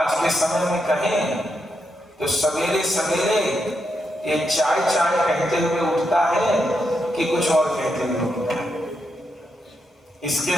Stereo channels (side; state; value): both; normal; correlation 0.83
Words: के समय में कहें तो सवेरे सवेरे ये चाय चाय कहते हुए उठता है कि कुछ और कहते हुए उठता है। इसके